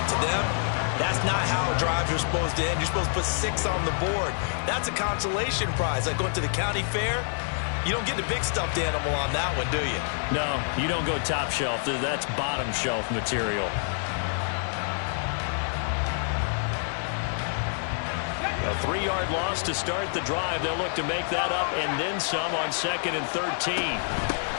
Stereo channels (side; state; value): right; silent; digital silence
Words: To them, that's not how drives are supposed to end. You're supposed to put 6 on the board. That's a consolation prize. Like going to the county fair, you don't get the big stuffed animal on that one, do you? No, you don't go top shelf. That's bottom shelf material. A 3-yard loss to start the drive. They'll look to make that up and then some on 2nd and 13.